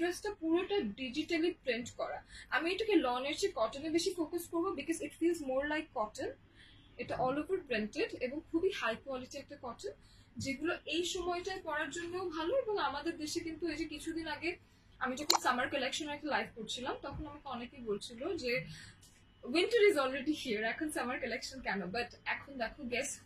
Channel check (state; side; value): identical; both; correlation 1.00